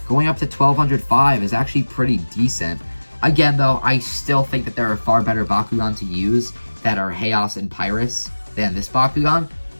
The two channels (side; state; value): both; inverted; correlation -1.00